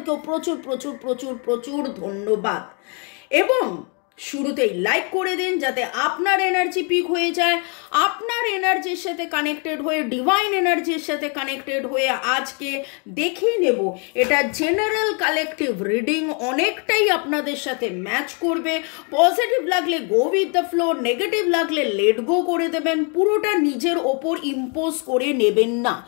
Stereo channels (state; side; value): quieter; right; 35.9 dB